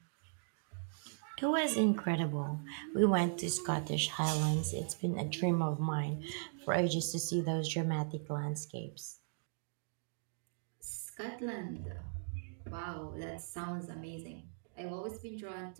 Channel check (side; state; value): left; silent; digital silence